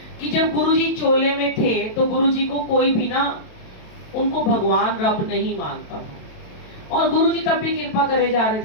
कि जब गुरुजी चोले में थे तो गुरुजी को कोई भी ना उनको भगवान रब नहीं मानता था। और गुरुजी तब भी कृपा करे जा रहे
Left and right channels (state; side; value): late; right; 27 ms